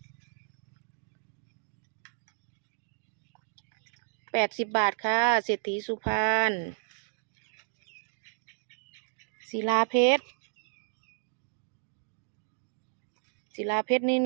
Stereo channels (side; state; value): left; silent; digital silence